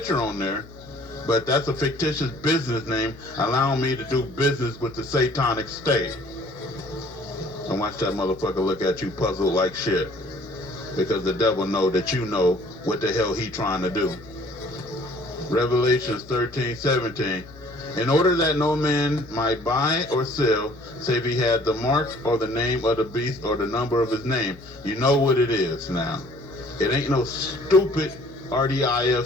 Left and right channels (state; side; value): noise; left; hum, 20 dB below the sound